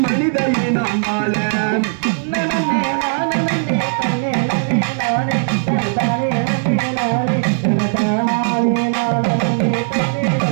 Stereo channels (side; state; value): left; silent; digital silence